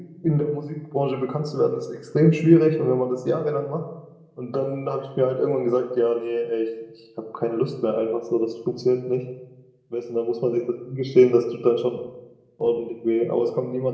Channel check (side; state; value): both; identical; correlation 1.00